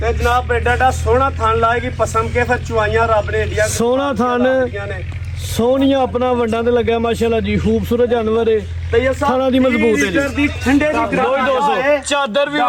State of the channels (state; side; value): identical; both; correlation 1.00